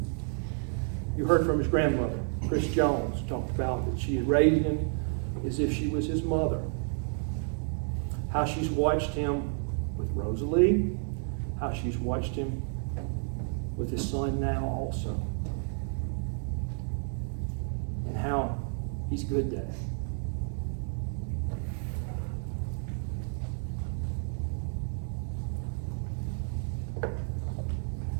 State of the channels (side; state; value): left; silent; 57 dB below the other